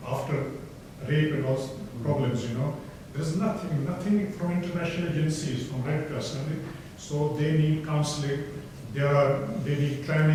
after rape and all problems, you know. There's nothing from international agencies, from Red Cross, so they need counseling, they need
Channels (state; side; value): identical; both; correlation 1.00